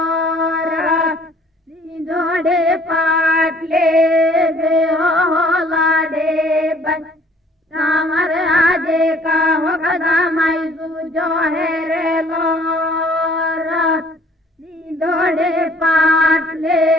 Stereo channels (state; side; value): normal; both; correlation 0.56